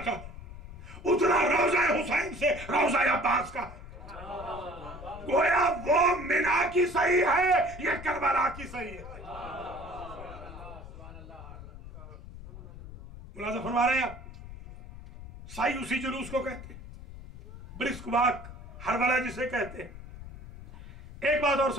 का उतना रोजा हुसैन से रोजा अब्बास का। गोया वो मिना की सही है, ये करबला की सही है। मुलाज़ा फरमा रहे हैं आप, साई उसी जुलूस को कहते हैं, ब्रिस्क वाक हरवला जिसे कहते हैं। एक बात और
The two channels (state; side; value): noise; left; rumble, 14 dB below the sound